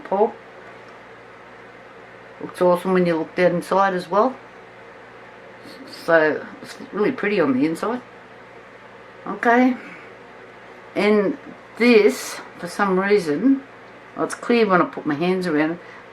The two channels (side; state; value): both; identical; correlation 1.00